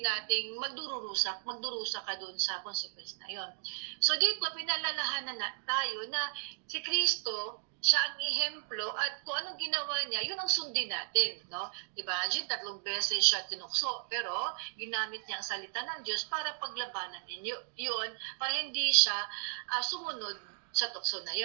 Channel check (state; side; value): silent; left; digital silence